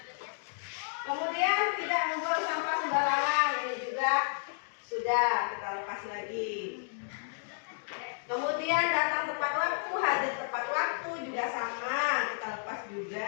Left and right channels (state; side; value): silent; right; digital silence